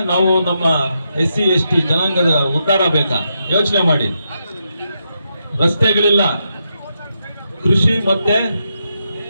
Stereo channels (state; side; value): inverted; both; correlation -0.84